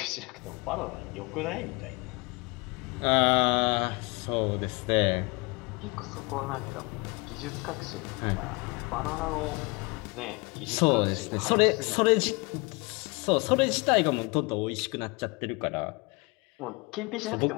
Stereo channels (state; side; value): quieter; right; 27.4 dB